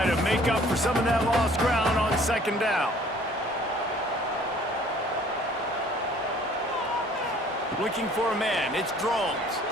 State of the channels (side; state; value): both; normal; correlation 0.55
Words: to make up for some of that lost ground on 2nd down. Looking for a man. It's Drones.